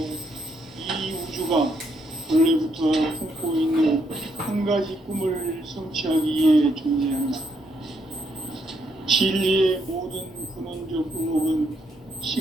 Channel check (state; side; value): normal; both; correlation 0.75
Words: 이 우주가 원래부터 품고 있는 한 가지 꿈을 성취하기 위해 존재한다. 진리의 모든 근원적 의목은